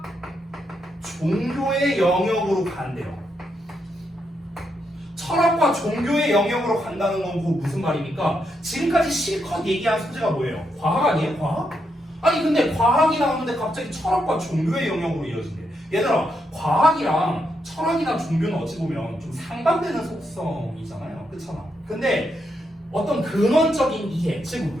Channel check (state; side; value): normal; both; correlation 0.81